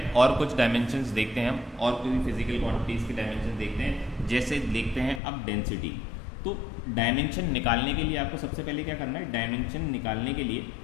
और कुछ डायमेंशंस देखते हैं हम, और कोई फिजिकल क्वांटिटीज़ की डायमेंशन देखते हैं। जैसे देखते हैं अब डेंसिटी। तो डायमेंशन निकालने के लिए आपको सबसे पहले क्या करना है, डायमेंशन निकालने के लिए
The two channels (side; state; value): right; drops out; at 5.2 s